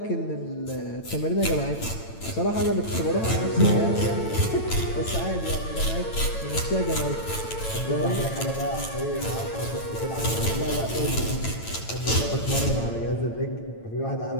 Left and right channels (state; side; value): late; right; 9.0 ms